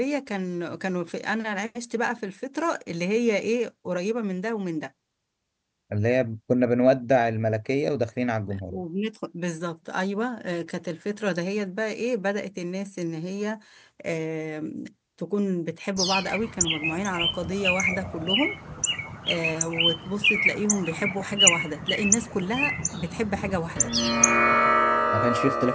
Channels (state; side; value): identical; both; correlation 1.00